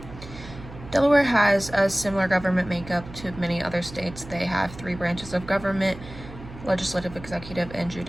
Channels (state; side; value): noise; right; hum, 15 dB below the sound